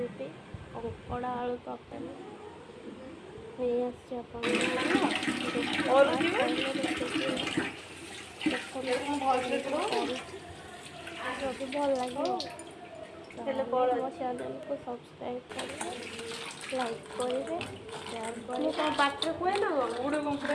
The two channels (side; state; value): both; identical; correlation 1.00